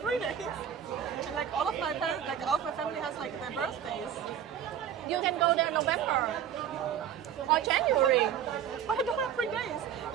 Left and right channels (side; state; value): left; quieter; 9.2 dB